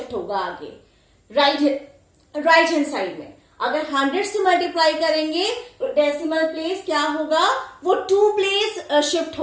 होगा आगे right hand side में. अगर 100 से मल्टीप्लाई करेंगे तो डेसिमल प्लेस क्या होगा? वो 2 प्लेस शिफ्ट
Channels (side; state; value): both; identical; correlation 1.00